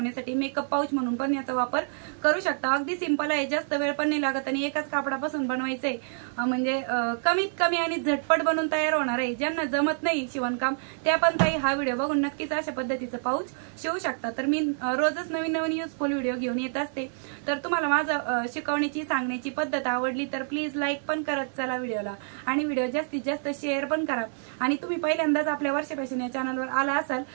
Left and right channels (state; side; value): silent; left; 60 dB below the other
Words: मेकअप पाऊच म्हणून पण याचा वापर करू शकता। अगदी सिंपल आहे, जास्त वेळ पण नाही लागत आणि एकाच कापडापासून बनवायचंय, म्हणजे कमीत कमी आणि झटपट बनवून तयार होणार आहे। ज्यांना जमत नाही शिवणकाम त्या पण ताई हा व्हिडिओ बघून नक्कीच अशा पद्धतीचं पाऊच शिवू शकता। तर मी रोजच नवीन नवीन युजफुल व्हिडिओ घेऊन येत असते। तर तुम्हाला माझं शिकवण्याची सांगण्याची पद्धत आवडली तर प्लीज लाईक पण करत चला व्हिडिओला आणि व्हिडिओ जास्तीत जास्त शेअर पण करा। आणि तुम्ही पहिल्यांदाच आपल्या वर्षा फॅशन या चॅनलवर आला असाल